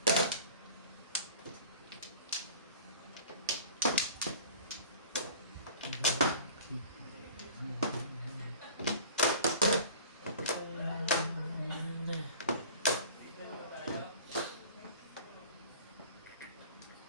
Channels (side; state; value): both; inverted; correlation -0.43